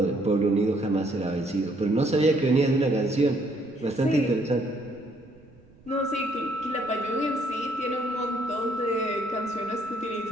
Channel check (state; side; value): noise; right; rumble, 27 dB below the sound